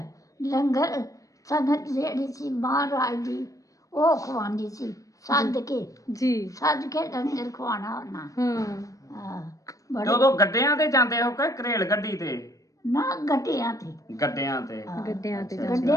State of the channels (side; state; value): right; late; 0.16 ms